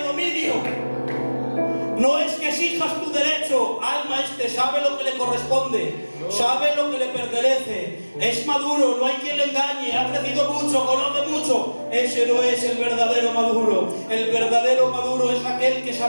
No es que exijas tu derecho, alma, sabe lo que le corresponde, sabe lo que le pertenece, es maduro, no hay quien le engañe, ha crecido mucho, conoce mucho. Ese no es el verdadero maduro. El verdadero maduro es aquel que,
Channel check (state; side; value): inverted; both; correlation -1.00